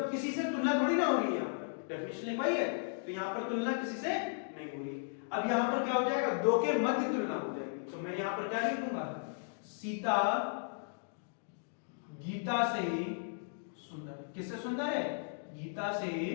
किसी से तुलना थोड़ी ना हो रही है, यहां पर डेफिनेशन वही है, तो यहां पर तुलना किसी से नहीं हो रही। अब यहां पर क्या हो जाएगा? दो के मध्य तुलना हो जाएगी, तो मैं यहां पर क्या लिखूंगा? सीता गीता से सुंदर। किससे सुंदर है? गीता से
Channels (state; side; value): silent; right; digital silence